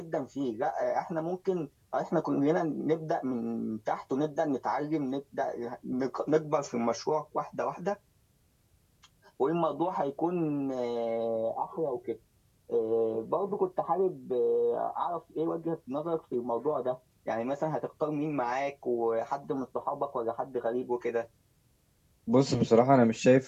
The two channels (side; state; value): both; identical; correlation 1.00